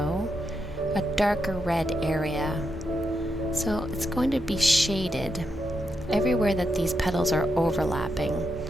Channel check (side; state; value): both; normal; correlation 0.84